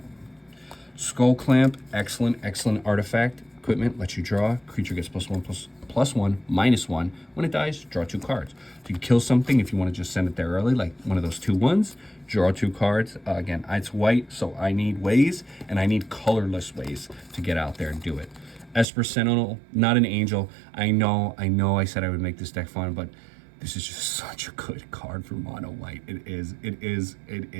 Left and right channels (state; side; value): drops out; left; at 18.9 s